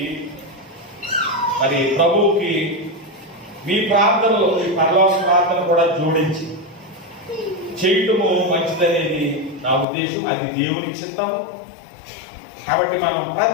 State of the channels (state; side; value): drops out; right; at 9.9 s